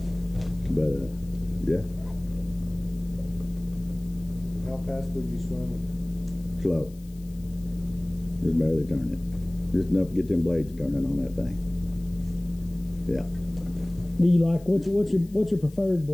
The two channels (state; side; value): noise; left; hiss, 26 dB below the sound